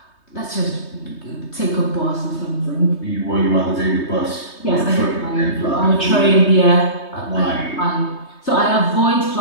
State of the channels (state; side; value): late; right; 3.2 ms